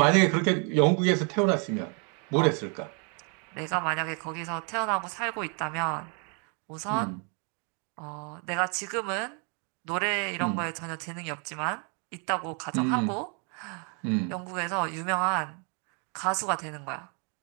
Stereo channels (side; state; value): left; quieter; 37.8 dB